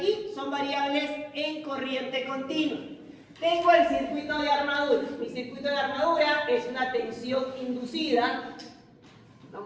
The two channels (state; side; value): identical; both; correlation 1.00